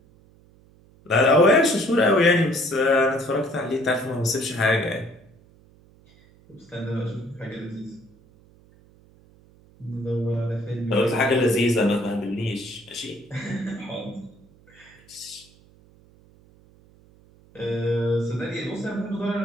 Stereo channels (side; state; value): right; noise; hum, 28 dB below the sound